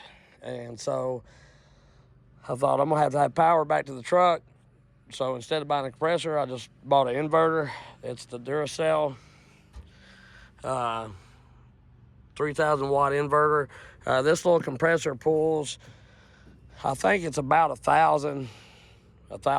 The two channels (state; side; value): identical; both; correlation 1.00